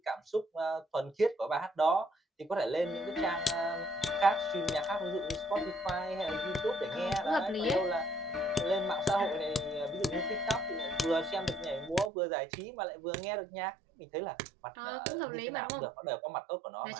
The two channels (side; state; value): left; drops out; at 12.1 s